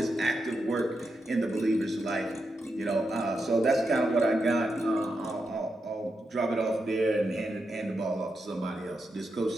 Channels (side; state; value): both; normal; correlation 0.86